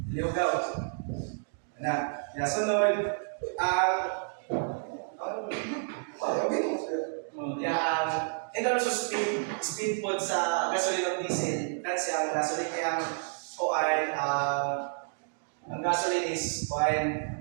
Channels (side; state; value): left; silent; digital silence